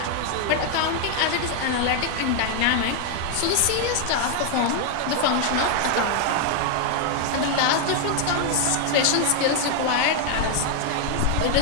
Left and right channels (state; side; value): different; both; correlation 0.00